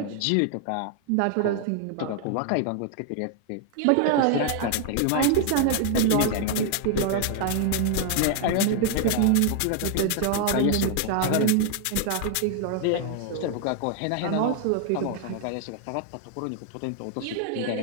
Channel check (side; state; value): both; different; correlation 0.00